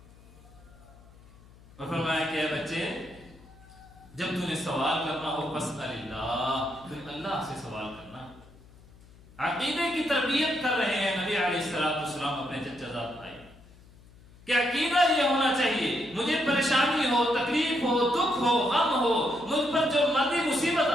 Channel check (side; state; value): left; noise; hum, 24 dB below the sound